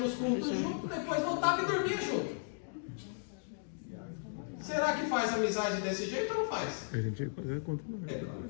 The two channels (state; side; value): silent; right; digital silence